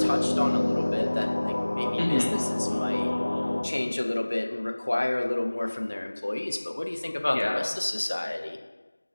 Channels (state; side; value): inverted; both; correlation -1.00